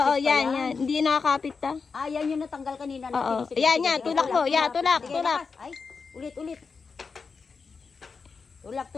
Oo, pa yan. Hindi nakakapit ta. Ah, yan yung natanggal kanina. Oo. Sige, Yan, sige, yan. sige. Tulak mo. Yan, tulak. Sige, Tulak. lakas. Ay, ulit.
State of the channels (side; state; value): right; quieter; 5.0 dB